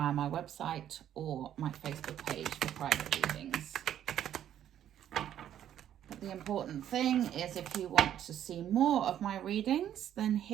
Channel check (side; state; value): left; quieter; 10.7 dB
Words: my website or my Facebook page for private readings. But the important thing is, if you want to see more of my readings, then